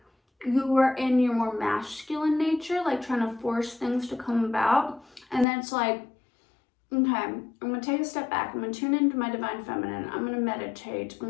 you were in your more masculine nature, like trying to force things to come about. And then it's like, okay, I'm going to take a step back. I'm going to tune into my divine feminine. I'm going to meditate.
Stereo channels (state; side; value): drops out; right; at 5.5 s